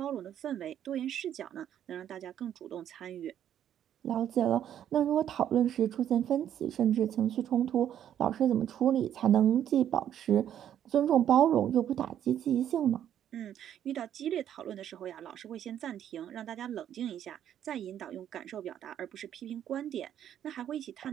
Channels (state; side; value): quieter; left; 10.3 dB